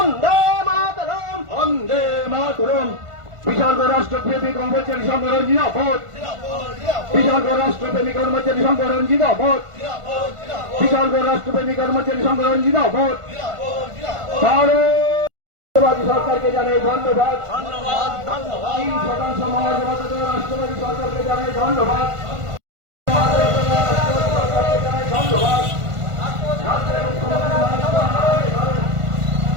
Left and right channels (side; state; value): left; late; 1.5 ms